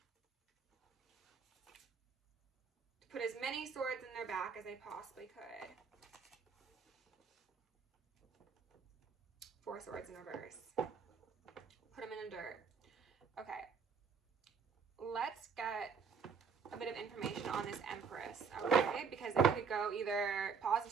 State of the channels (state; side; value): quieter; left; 5.8 dB